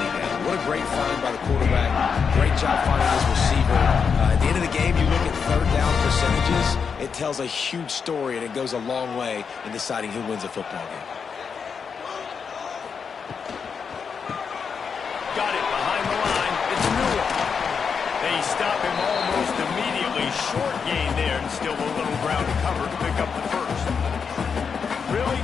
down. What a great find by the quarterback. Great job finding his receiver. At the end of the game, you look at 3rd down percentages. It tells a huge story, and it goes a long way in deciding who wins a football game. Got it behind the line. It's Newell. They stop him almost immediately. Short gain there, and still a little ground to cover to pick up the first. Really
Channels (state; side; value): quieter; right; 6.1 dB